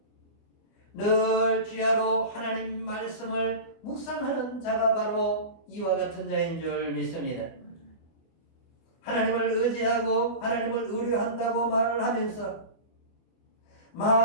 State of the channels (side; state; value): right; late; 24 ms